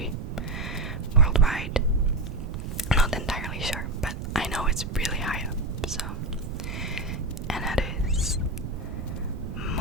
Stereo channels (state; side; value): noise; right; rumble, 6 dB below the sound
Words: worldwide. Not entirely sure, but I know it's really high up. So, and that is